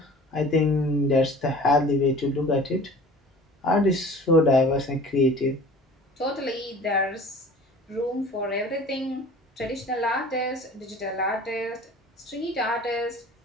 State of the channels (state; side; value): normal; both; correlation 0.44